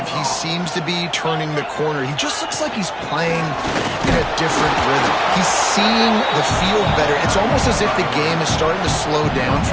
he seems to be turning the corner. He just looks like he's playing in a different rhythm. He's seeing the field better. It's almost as if the game is starting to slow down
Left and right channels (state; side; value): identical; both; correlation 1.00